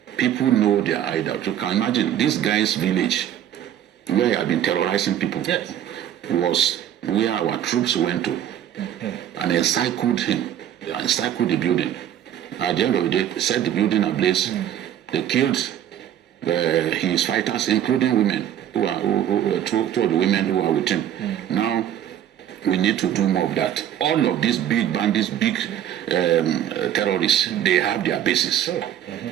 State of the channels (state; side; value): quieter; left; 10.7 dB